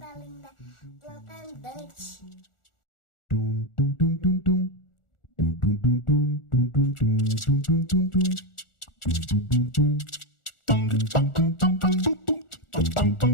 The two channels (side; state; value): right; late; 1.4 ms